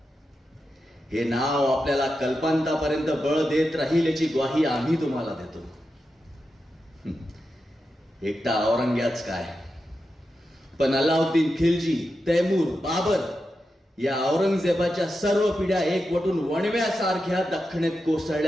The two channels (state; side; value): normal; both; correlation 0.89